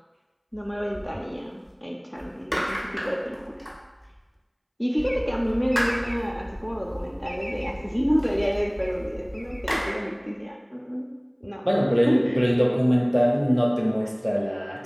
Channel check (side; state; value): both; identical; correlation 1.00